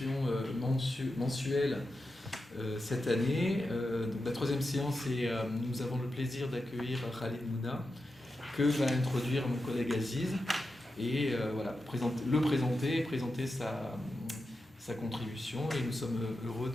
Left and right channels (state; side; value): normal; both; correlation 0.89